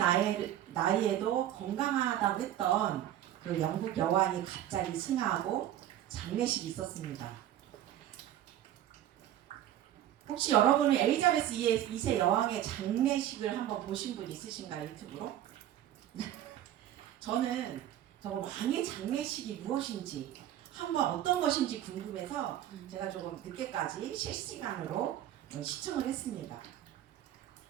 나이에도 건강하다고 했던 그 영국 여왕이 갑자기 승하하고 장례식이 있었습니다. 혹시 여러분은 엘리자베스 2세 여왕의 장례식을 한번 보신 분 있으신가요? 유튜브로? 저는 정말 왕의 장례식이 무엇인지 한번 어떤 것인지 궁금해서 제가 조금 늦게까지 실시간으로 시청을 했습니다.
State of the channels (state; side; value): quieter; left; 12.0 dB